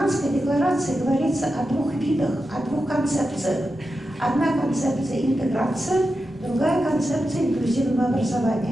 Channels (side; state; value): both; normal; correlation 0.90